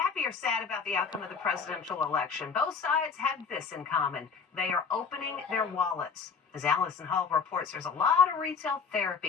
or sad about the outcome of the presidential election, both sides have this in common. They are opening their wallets. As Allison Hall reports, there's a lot of retail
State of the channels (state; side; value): quieter; right; 5.7 dB